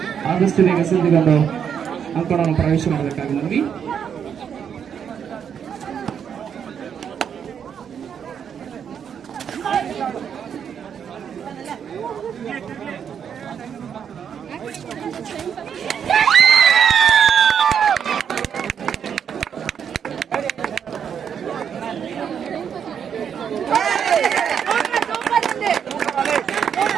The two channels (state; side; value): quieter; left; 7.9 dB